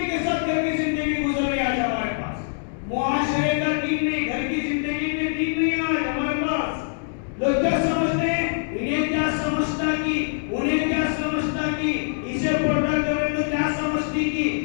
کے ساتھ گھر کی زندگی گزر رہی ہے آج ہمارے پاس۔ معاشرے کا دین نہیں، گھر کی زندگی میں دین نہیں آج ہمارے پاس۔ لوگ کیا سمجھتے ہیں؟ انہیں کیا سمجھتا کی، انہیں کیا سمجھتا کی، اسے پردہ کرے تو کیا سمجھتی کی،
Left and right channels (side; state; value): right; silent; 63 dB below the other